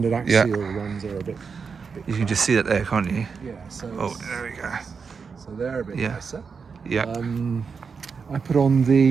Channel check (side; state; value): left; quieter; 5.6 dB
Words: axial ones are a bit you can just see that there, can't you? Yeah. So there we go. So they're a bit nicer. Yeah. I put on